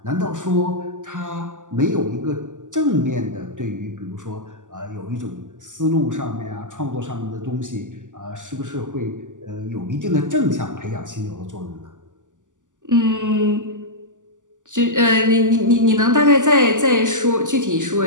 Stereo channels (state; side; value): late; left; 0.87 ms